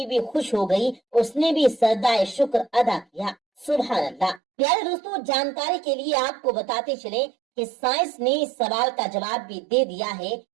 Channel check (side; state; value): left; drops out; at 4.4 s